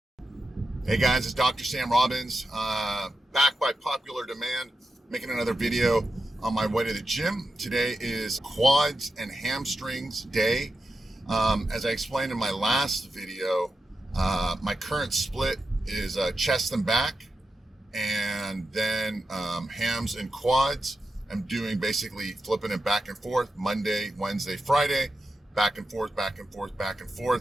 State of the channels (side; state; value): both; normal; correlation 0.89